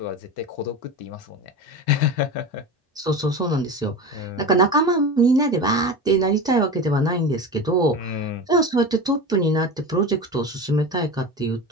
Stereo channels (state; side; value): normal; both; correlation 0.27